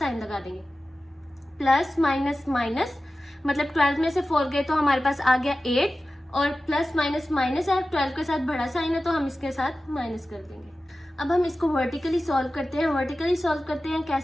लगा देंगे। प्लस माइनस माइनस, मतलब 12 में से 4 गए तो हमारे पास आ गया 8, और प्लस माइनस माइनस है, 12 के साथ बड़ा साइन है, तो हम इसके साथ माइनस कर देंगे। अब हम इसको वर्टिकली सॉल्व करते हैं। वर्टिकली सॉल्व करते हैं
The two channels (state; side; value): normal; both; correlation 0.95